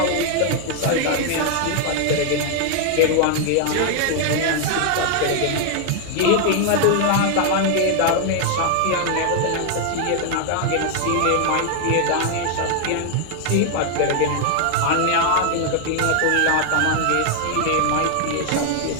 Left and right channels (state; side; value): different; both; correlation 0.00